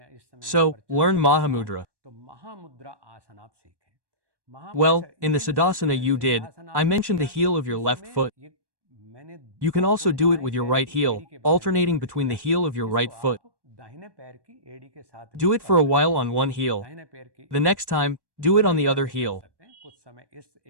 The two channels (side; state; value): left; late; 1.2 ms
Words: इस समय So, learn mahamudra. तो महामुद्रा आसन आप सीखें. Well, in the siddhasana you did, I mentioned the heel of your left foot. You can also do it with your right heel, alternating between the heel of your right foot. Do it for a while on one heel. The next time, do it on the other heel.